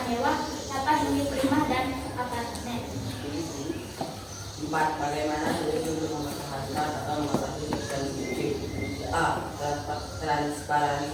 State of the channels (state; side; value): identical; both; correlation 1.00